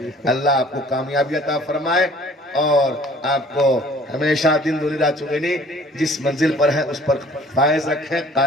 अल्लाह आपको कामयाबी अता फरमाए और आपको हमेशा दिन दूनी रात चुगनी जिस मंजिल पर है उस पर फायज रखे,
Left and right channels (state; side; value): normal; both; correlation 0.52